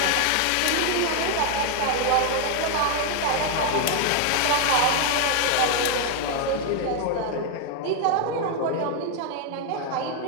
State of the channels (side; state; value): both; different; correlation 0.01